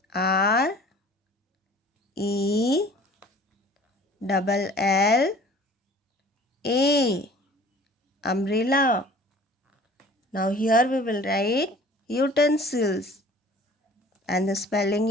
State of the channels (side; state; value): both; normal; correlation 0.48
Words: R E double L A, umbrella. Now here we will write utensils, and the spelling